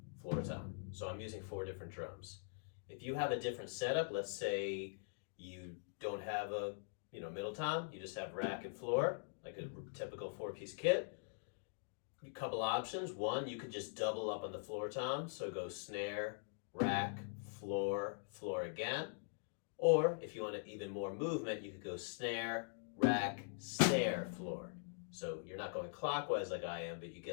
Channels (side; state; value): right; silent; digital silence